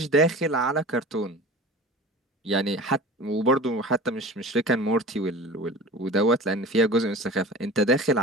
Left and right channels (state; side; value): normal; both; correlation 0.37